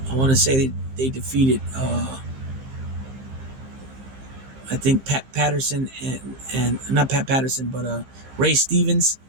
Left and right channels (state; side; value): late; left; 15 ms